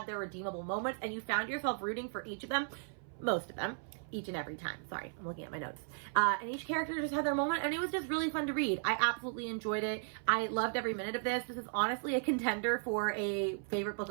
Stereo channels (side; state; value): left; silent; 54 dB below the other